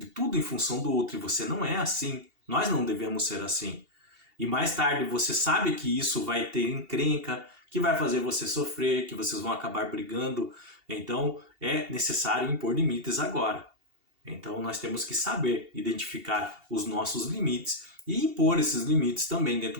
em função do outro e você não é assim, nós não devemos ser assim. E mais tarde você sabe que isso vai ter encrenca, que vai fazer você sofrer, que vocês vão acabar brigando. Então é necessário impor limites agora. Então nós temos que saber identificar os nossos limites e impor esses limites também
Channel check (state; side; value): late; left; 2.7 ms